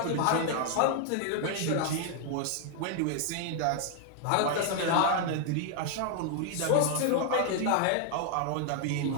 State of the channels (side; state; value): both; different; correlation 0.00